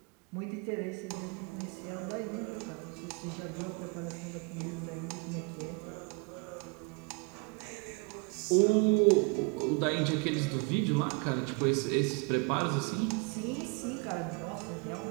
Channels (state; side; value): quieter; left; 31.8 dB